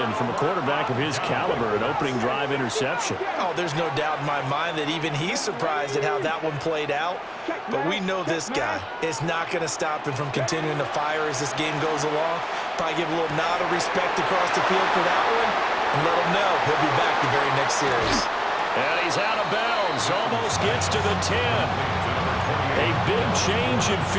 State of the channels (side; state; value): both; identical; correlation 1.00